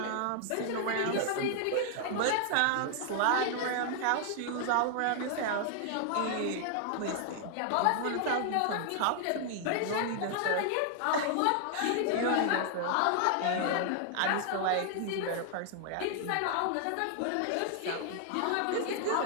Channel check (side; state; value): both; different; correlation 0.00